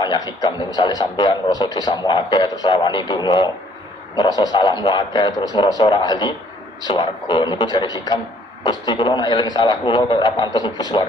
hikam. Misalnya sampean ngerasa dosamu akeh terus rawani donga, ngerasa salahmu akeh terus ngerasa ora ahli swarga. Niku jare hikam, Gusti kula nek eling salah kula kok ora pantes mlebu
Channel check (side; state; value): both; normal; correlation 0.61